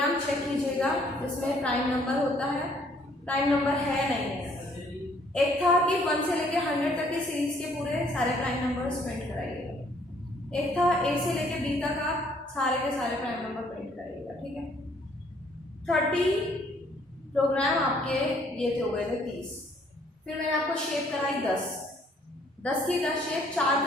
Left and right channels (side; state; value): both; normal; correlation 0.63